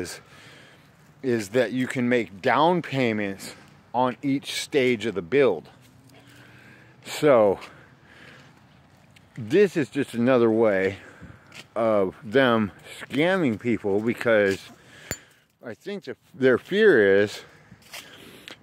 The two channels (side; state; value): both; identical; correlation 1.00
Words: that you can make down payments on each stage of the build. So this is just another way of them scamming people, because I think their fear is